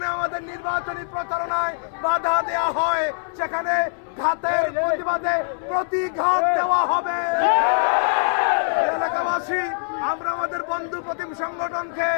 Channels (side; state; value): right; silent; 63 dB below the other